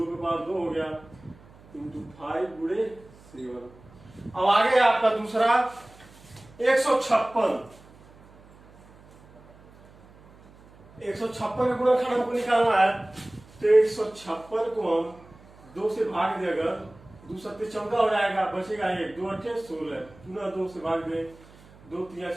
पे पावर 2 हो गया, इंटू 5 गुणे 7। अब आगे आपका दूसरा 156 का गुणनखंड हमको निकालना है। तो 156 को हम 2 से भाग दे, अगर 2 सत्ते 14 हो जाएगा, बचेगा 1, 2 8 16, पुनः 2 से भाग दे, 2 3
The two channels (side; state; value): right; noise; hum, 24 dB below the sound